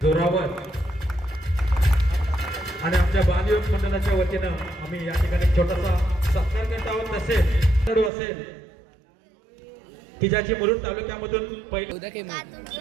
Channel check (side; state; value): left; drops out; at 8.1 s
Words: जोरावर आणि आमच्या बालयोग मंडळाच्या वतीनं आम्ही या ठिकाणी छोटासा सत्कार करत आहोत. तसेच असेल की ज्याची मुरुड तालुक्यामधून पहिले